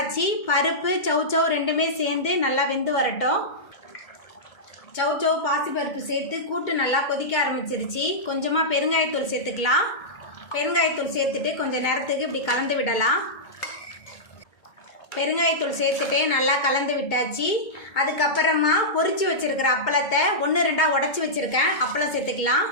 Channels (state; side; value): late; right; 2.2 ms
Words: பருப்பு சௌச்சௌ ரெண்டுமே சேர்ந்து நல்லா வெந்து வரட்டும். சௌச்சௌ பாசிப்பருப்பு சேர்த்து கூட்டு நல்லா கொதிக்க ஆரம்பிச்சிருச்சு. கொஞ்சமாக பெருங்காயத்தூள் சேர்த்துக்கலாம். பெருங்காயத்தூள் சேர்த்துட்டு கொஞ்சம் நேரத்துக்கு இப்படி கலந்து விடலாம். பெருங்காயத்தூள் சேர்த்துட்டு நல்லா கலந்து விட்டாச்சு. அதுக்கப்புறமா பொரிச்சு வச்சுருக்கிற அப்பளத்தை 1-2 உடச்சி வச்சுருக்கேன். அப்பளம் சேர்த்துக்கலாம்.